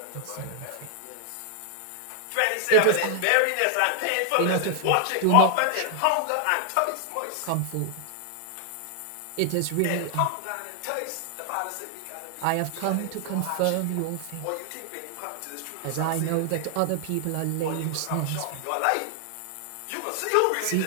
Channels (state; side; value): different; both; correlation 0.00